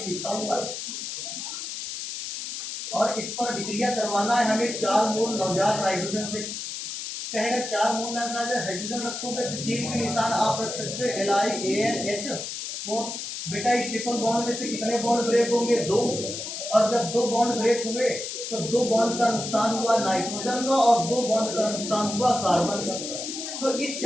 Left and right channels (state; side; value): noise; left; hiss, 6 dB below the sound